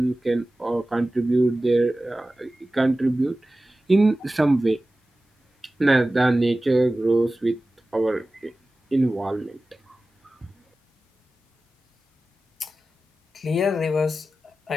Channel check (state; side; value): normal; both; correlation 0.96